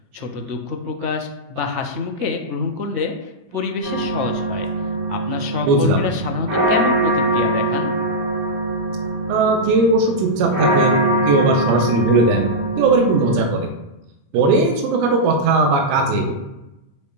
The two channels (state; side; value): late; left; 21 ms